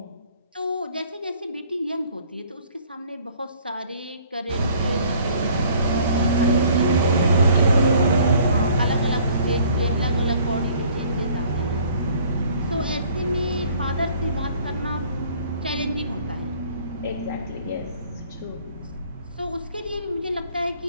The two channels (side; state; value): both; inverted; correlation -0.57